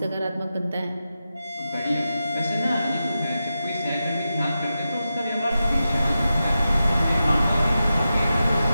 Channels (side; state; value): both; inverted; correlation -0.91